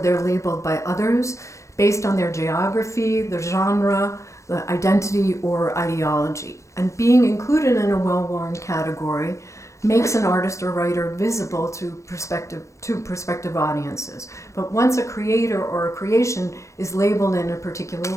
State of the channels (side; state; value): right; late; 0.15 ms